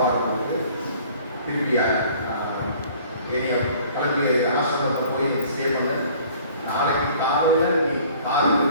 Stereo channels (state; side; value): inverted; both; correlation -0.52